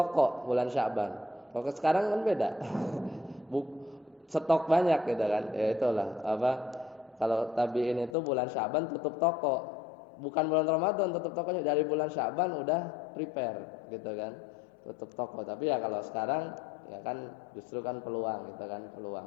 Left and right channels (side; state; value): right; drops out; at 8.2 s